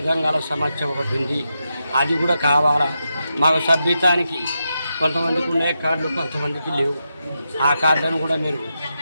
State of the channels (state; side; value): inverted; both; correlation -0.87